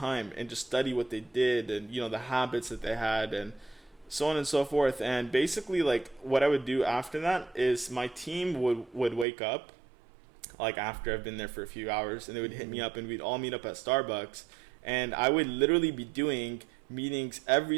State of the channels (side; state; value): left; drops out; at 9.2 s